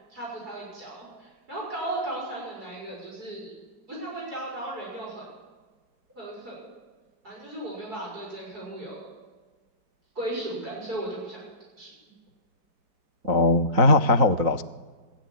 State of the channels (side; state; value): left; late; 4.0 ms